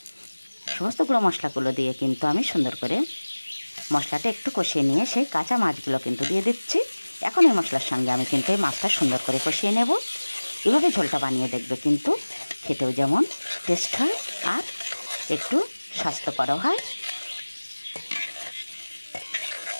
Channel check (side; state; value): both; inverted; correlation -1.00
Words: সমস্ত গুঁড়ো মশলাগুলো দিয়ে কিন্তু আমি সুন্দর করে মশলাটা একটু কষিয়ে নিয়ে সেই কাঁচা মাছগুলো কিন্তু দিয়ে দিচ্ছি। এখন এই মশলার সঙ্গে আমি কিন্তু এই মাছটা সুন্দর করে কষিয়ে নেব। এভাবে ঝোলটা বানিয়ে দেখবে, কিন্তু খেতেও যেমন টেস্ট হয় আর একটু স্বাস্থ্যকরও হয়।